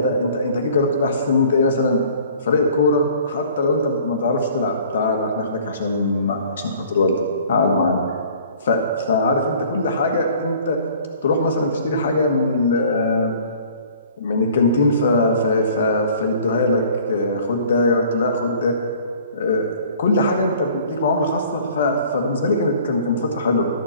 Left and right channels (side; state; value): both; inverted; correlation -0.51